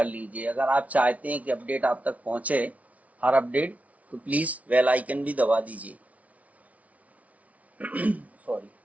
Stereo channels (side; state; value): left; late; 0.068 ms